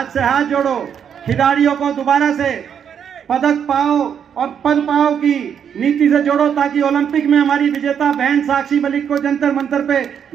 से हाथ जोड़ो, खिलाड़ियों को दोबारा से पदक पाओ और पद पाओ की नीति से जोड़ो, ताकि ओलंपिक में हमारी विजेता बहन साक्षी मलिक को जंतर मंतर पे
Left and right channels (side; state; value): left; quieter; 8.1 dB